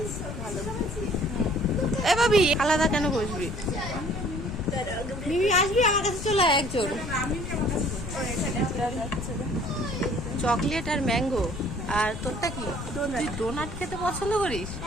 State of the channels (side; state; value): left; noise; rumble, 8 dB below the sound